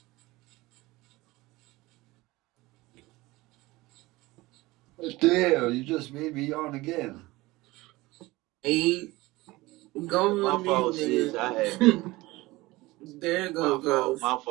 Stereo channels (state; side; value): quieter; left; 20.2 dB